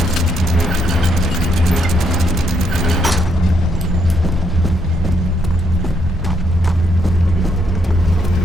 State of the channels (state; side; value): normal; both; correlation 0.75